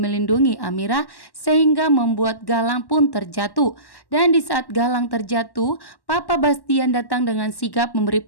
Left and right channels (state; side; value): late; right; 1.1 ms